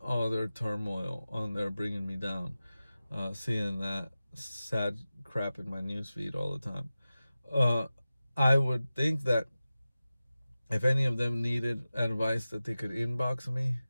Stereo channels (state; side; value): inverted; both; correlation -0.95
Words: all their turmoil on there, bringing me down, seeing that sad crap in my newsfeed all the time. I would think that if any of them needed advice, that they could inbox me